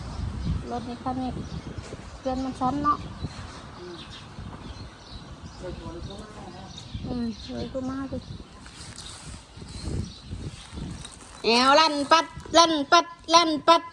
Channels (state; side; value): identical; both; correlation 1.00